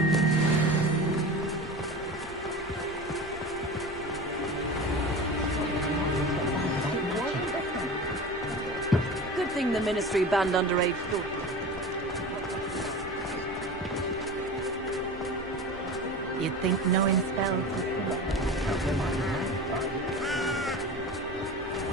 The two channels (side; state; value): both; normal; correlation 0.32